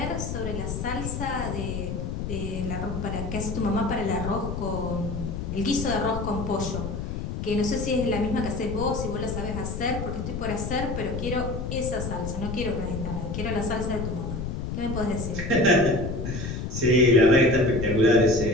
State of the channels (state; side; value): noise; left; rumble, 4 dB below the sound